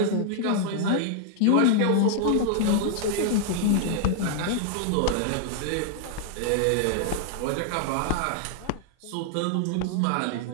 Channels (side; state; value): both; different; correlation -0.01